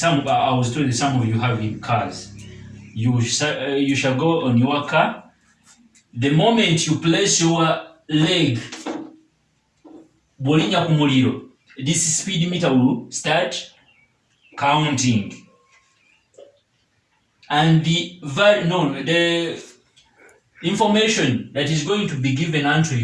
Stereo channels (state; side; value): identical; both; correlation 1.00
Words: I was told that some of you have in cars. You shall go on your car. The moment you place your leg, bolinya ku muliro, this speed meter will start counting. And the information that is going to be given unto